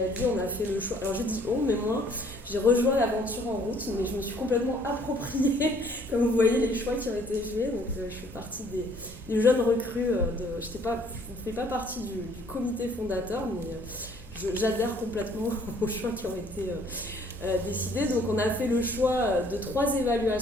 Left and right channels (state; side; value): normal; both; correlation 0.60